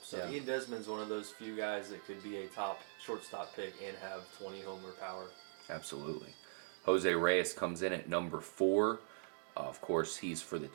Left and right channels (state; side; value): silent; left; digital silence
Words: So Desmond's one of those few guys that could be a top shortstop pick and have 20 homer power. Absolutely. Jose Reyes comes in at number 4. Of course, he's for the